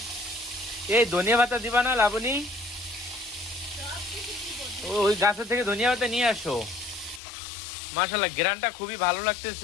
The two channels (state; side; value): drops out; right; at 7.2 s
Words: এই ধনিয়া পাতা দিবা না লাবণী? ওই গাছের থেকে ধনিয়া পাতা নিয়ে আসো। মাশাল্লাহ, গ্রানটা খুবই ভালো